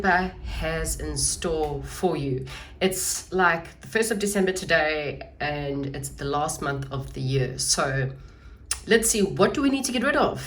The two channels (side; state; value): both; identical; correlation 1.00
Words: has in store for you. It's like the 1st of December today and it's the last month of the year. So let's see, what do we need to get rid